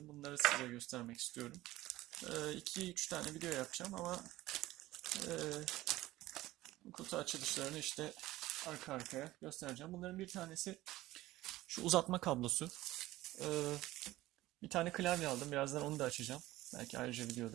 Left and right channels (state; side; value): quieter; left; 16.9 dB